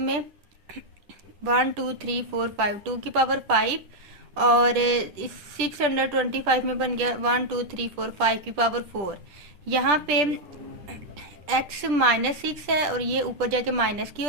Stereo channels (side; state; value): left; late; 10 ms